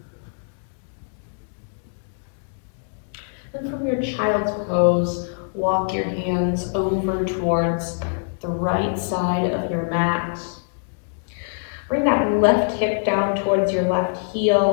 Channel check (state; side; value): silent; right; digital silence